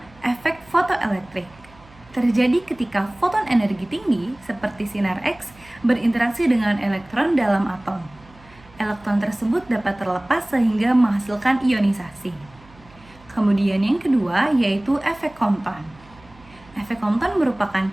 efek fotoelektrik. Terjadi ketika foton energi tinggi, seperti sinar X, berinteraksi dengan elektron dalam atom. Elektron tersebut dapat terlepas sehingga menghasilkan ionisasi. Kemudian yang kedua, yaitu efek Compton. Efek Compton merupakan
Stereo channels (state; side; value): noise; right; hum, 25 dB below the sound